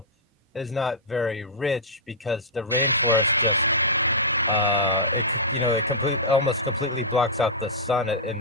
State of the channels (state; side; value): normal; both; correlation -0.12